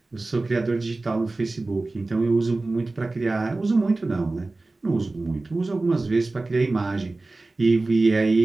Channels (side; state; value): left; quieter; 3.2 dB